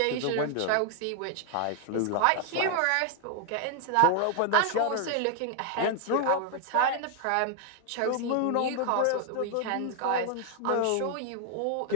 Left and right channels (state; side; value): different; both; correlation 0.00